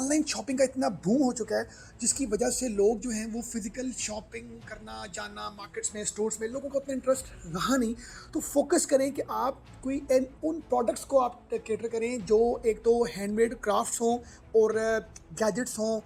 शॉपिंग का इतना बूम हो चुका है जिसकी वजह से लोग जो हैं वो फिजिकल शॉपिंग करना जाना मार्केट्स में स्टोर्स में लोगों को उतना इंटरेस्ट रहा नहीं। तो फोकस करें कि आप कोई उन प्रोडक्ट्स को आप कैटर करें जो एक तो हैंडमेड क्राफ्ट्स हों और गैजेट्स हों,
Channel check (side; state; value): both; identical; correlation 1.00